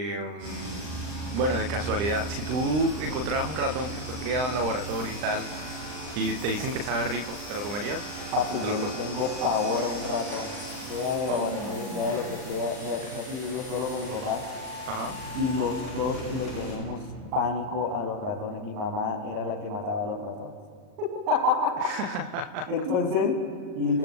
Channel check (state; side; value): late; left; 39 ms